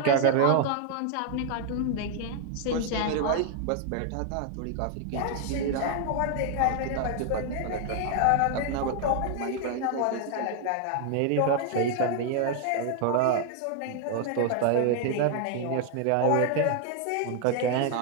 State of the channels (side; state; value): both; different; correlation 0.00